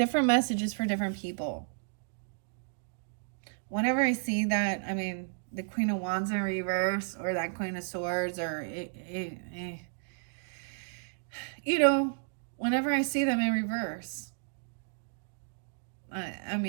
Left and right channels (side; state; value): left; silent; digital silence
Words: messages for different people. Whenever I see that, I mean, the Queen of Wands in reverse, or that Queen of Swords, or you know, whenever I see them in reverse, I